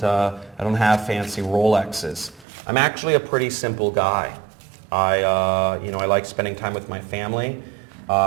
fancy Rolexes. I'm actually a pretty simple guy. I like spending time with my family.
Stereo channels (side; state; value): left; drops out; at 2.5 s